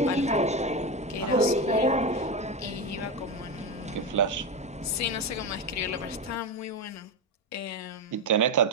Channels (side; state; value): both; normal; correlation 0.15